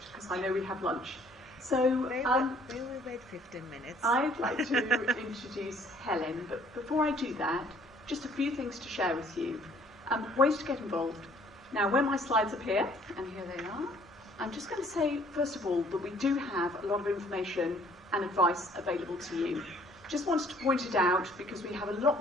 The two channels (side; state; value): both; normal; correlation 0.59